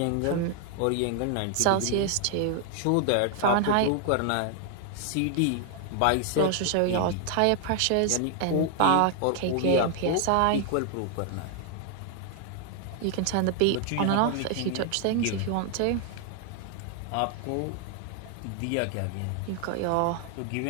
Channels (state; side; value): different; both; correlation 0.00